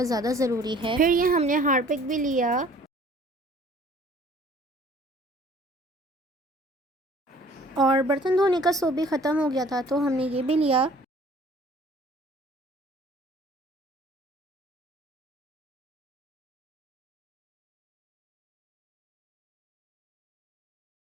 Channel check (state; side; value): normal; both; correlation 0.53